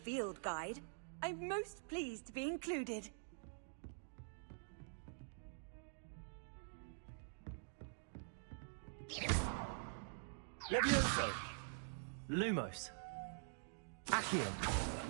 guide. I'm most pleased to be included. Levioso. Lumos. Accium.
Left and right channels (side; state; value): left; silent; digital silence